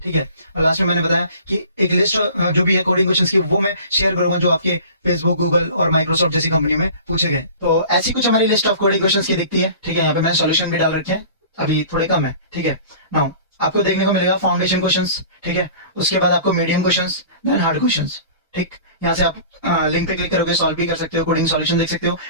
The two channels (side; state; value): both; inverted; correlation -0.43